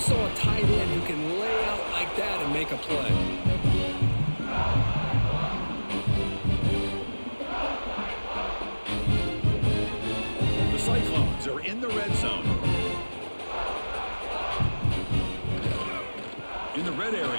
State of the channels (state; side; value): inverted; both; correlation -1.00